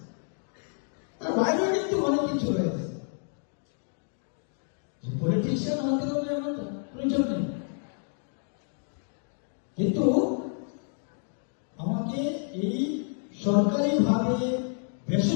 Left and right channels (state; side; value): silent; right; 58 dB below the other